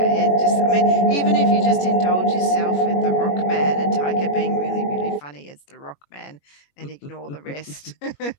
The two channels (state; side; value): late; right; 21 ms